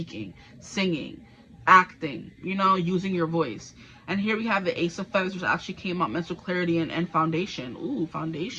singing, acting, you know, using your voice. And here we have the Ace of Feathers, which actually came out, mental clarity and foundation. Ooh,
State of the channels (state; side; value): identical; both; correlation 1.00